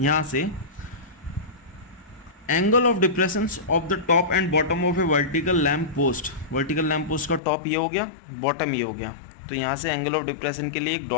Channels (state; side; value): drops out; right; at 7.4 s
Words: यहाँ से angle of depressions of the top and bottom of a vertical lamp post. Vertical lamp post का टॉप ये हो गया, बॉटम ये हो गया. तो यहाँ से एंगल ऑफ डिप्रेशन के लिए एक